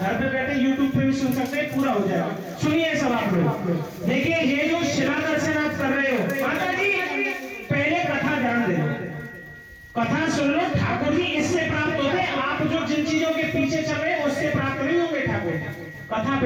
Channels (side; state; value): both; identical; correlation 1.00